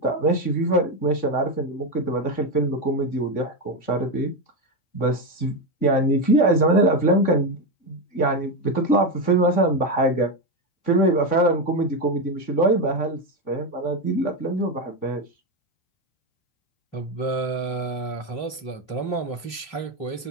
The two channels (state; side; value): late; right; 3.2 ms